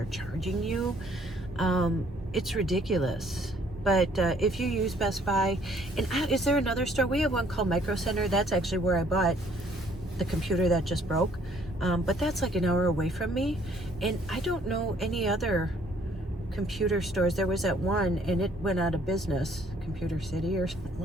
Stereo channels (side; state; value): both; normal; correlation 0.62